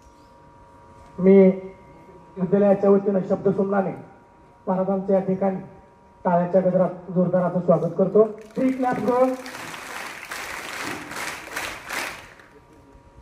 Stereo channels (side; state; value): both; identical; correlation 1.00